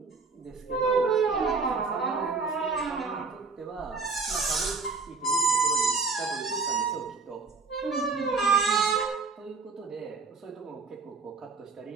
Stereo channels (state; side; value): quieter; left; 4.3 dB